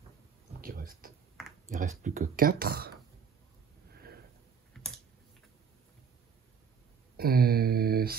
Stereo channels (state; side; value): quieter; left; 6.5 dB